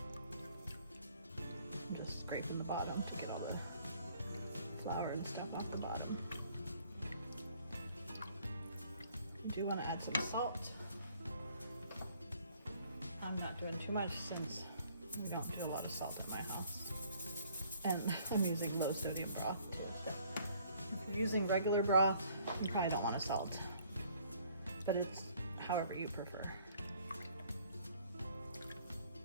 I'm just scraping the bottom to get all the flour and stuff off the bottom. You do want to add some salt. I'm not doing too much since we don't do a lot of salt in my house, and I'm using low sodium broth too. If you're using regular broth, you probably don't want to salt, but it's however you prefer.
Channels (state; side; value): inverted; both; correlation -0.60